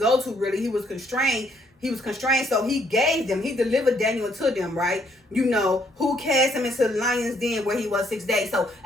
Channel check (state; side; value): normal; both; correlation 0.69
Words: to, really. He was constrained, so he delivered Daniel to them, right? Who cast him into the lion's den where he was 6 days. So